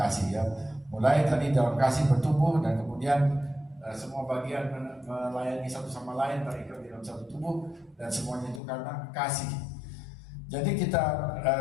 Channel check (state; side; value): drops out; right; at 8.6 s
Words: ya. Mulai tadi dalam kasih bertumbuh, dan kemudian semua bagian melayani satu sama lain, terikat di dalam satu tubuh, dan semuanya itu karena kasih. Jadi kita